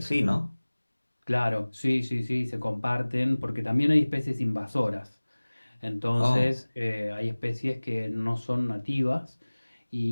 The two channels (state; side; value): inverted; both; correlation -1.00